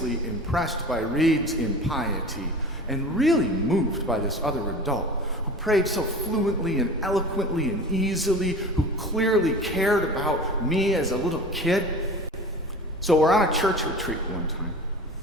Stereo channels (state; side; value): normal; both; correlation 0.37